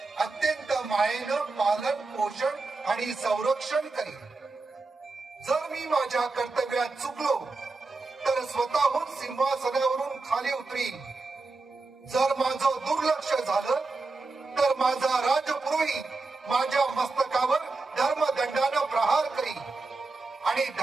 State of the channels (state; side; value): quieter; left; 3.7 dB